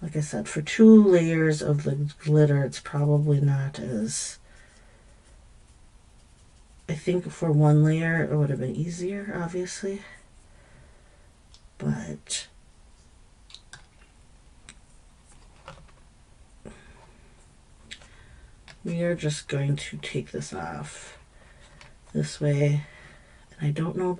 Like I said, for 2 layers of the glitter, it's probably not as... I think for 1 layer, it would have been easier, obviously. But... we are just going to take this off this way. And I don't know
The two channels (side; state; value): both; identical; correlation 1.00